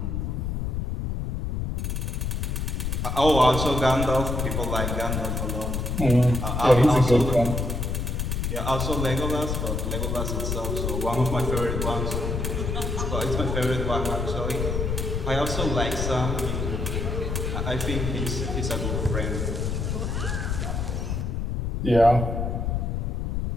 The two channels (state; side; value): noise; left; rumble, 1 dB below the sound